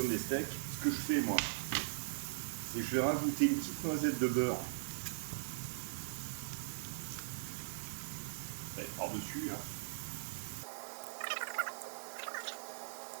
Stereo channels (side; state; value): left; silent; digital silence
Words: des steaks. Ce que je fais moi, c'est que je vais rajouter une petite noisette de beurre par-dessus. Hein.